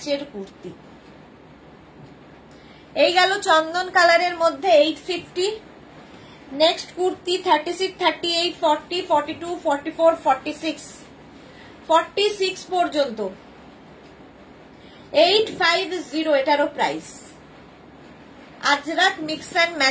কুর্তি। এই গেল চন্দন কালারের মধ্যে 850। নেক্সট কুর্তি 36, 38, 40, 42, 44, 46 পর্যন্ত 850, এটারও প্রাইস। আজরাক মিক্স অ্যান্ড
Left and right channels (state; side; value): identical; both; correlation 1.00